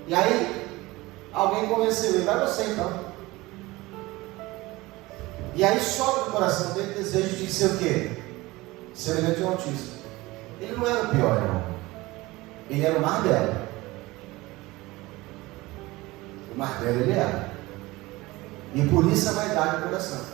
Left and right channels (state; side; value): quieter; left; 20.5 dB